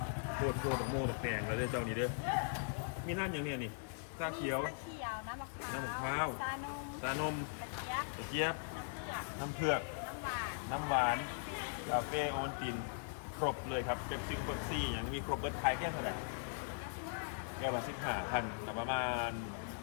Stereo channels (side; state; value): right; silent; digital silence